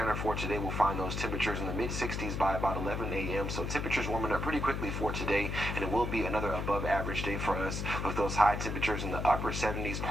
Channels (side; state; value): left; noise; hum, 2 dB below the sound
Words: for today, we'll find those temperatures in the mid 60s by about 11 a.m. So temperatures warming up pretty quickly for today, and it will be another above average day for us with those high temperatures in the upper 70s,